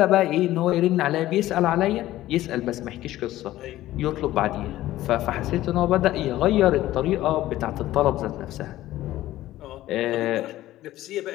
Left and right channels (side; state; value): right; quieter; 15.1 dB